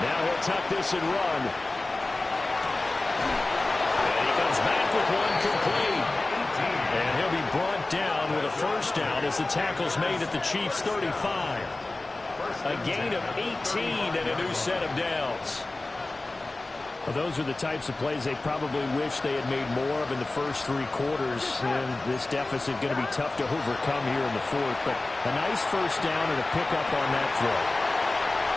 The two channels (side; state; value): right; quieter; 3.0 dB